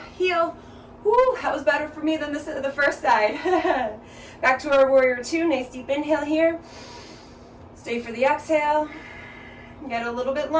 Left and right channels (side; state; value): both; identical; correlation 1.00